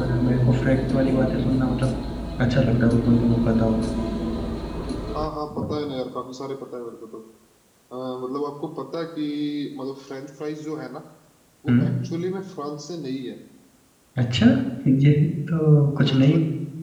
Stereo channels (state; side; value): identical; both; correlation 1.00